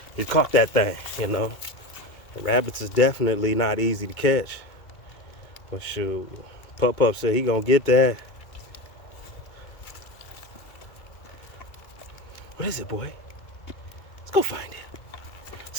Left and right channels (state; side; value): late; right; 2.2 ms